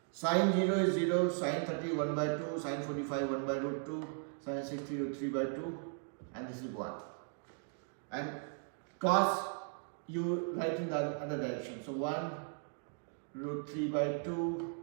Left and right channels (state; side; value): silent; left; 53 dB below the other